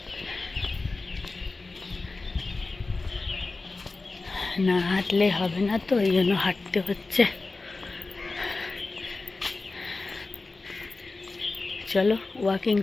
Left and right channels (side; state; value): right; quieter; 3.6 dB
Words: না হাঁটলে হবে না, তো এই জন্য হাঁটতে হচ্ছে। চলো, ওয়াকিং